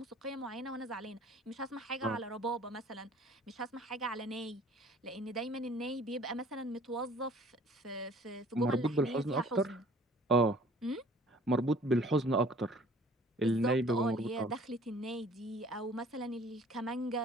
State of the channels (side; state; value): both; normal; correlation 0.52